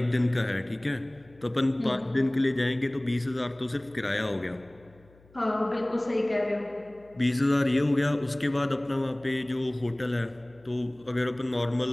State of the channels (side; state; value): left; noise; hum, 28 dB below the sound